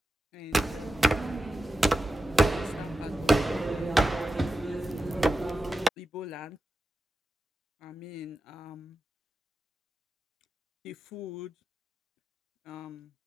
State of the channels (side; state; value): both; normal; correlation 0.92